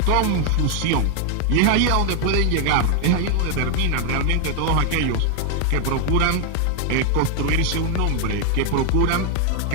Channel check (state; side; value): different; both; correlation 0.00